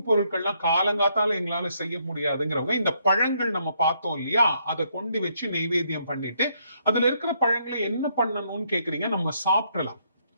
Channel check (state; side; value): inverted; both; correlation -0.73